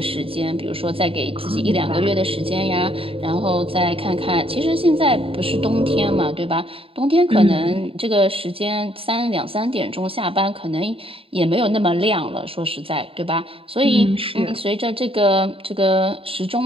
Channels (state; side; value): late; left; 0.27 ms